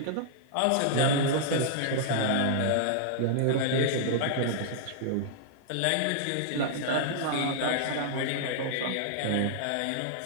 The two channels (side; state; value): both; different; correlation -0.01